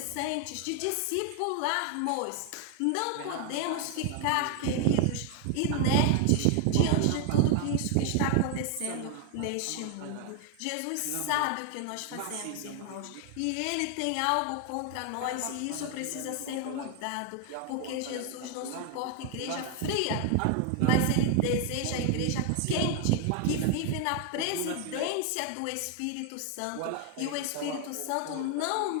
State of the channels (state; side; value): different; both; correlation 0.00